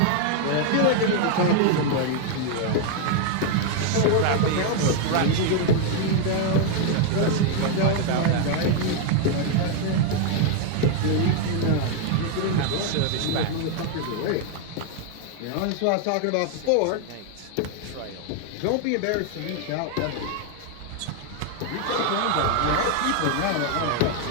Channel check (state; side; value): different; both; correlation 0.01